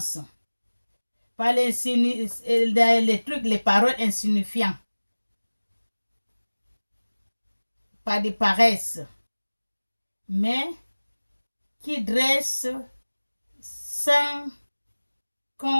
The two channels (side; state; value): both; inverted; correlation -1.00